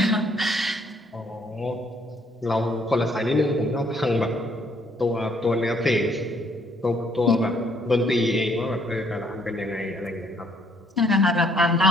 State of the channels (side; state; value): both; normal; correlation 0.67